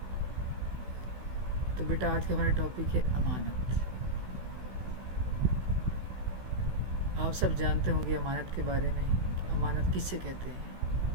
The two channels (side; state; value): left; late; 16 ms